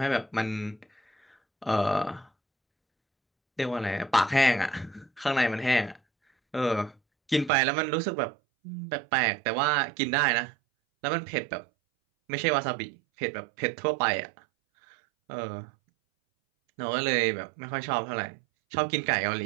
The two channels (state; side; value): drops out; left; at 7.5 s